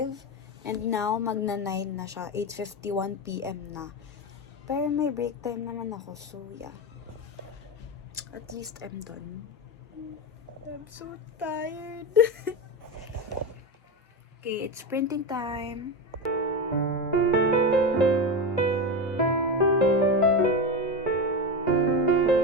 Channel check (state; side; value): normal; both; correlation 0.17